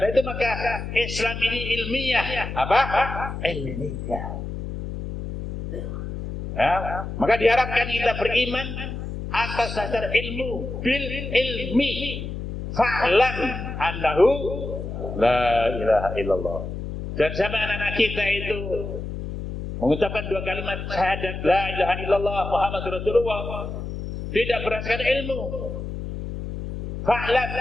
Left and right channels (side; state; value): left; noise; hum, 7 dB below the sound